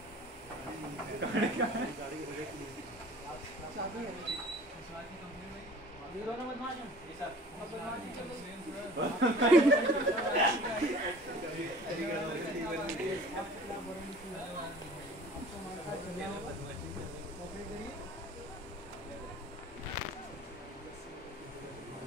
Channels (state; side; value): normal; both; correlation 0.46